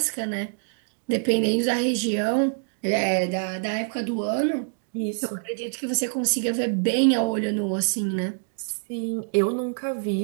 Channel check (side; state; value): left; silent; 61 dB below the other